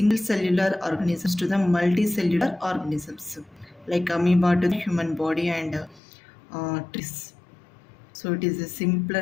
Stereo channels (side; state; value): right; drops out; at 6.0 s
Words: cellular organisms to the multicellular organisms, like amoeba to the human body and trees. So, it is a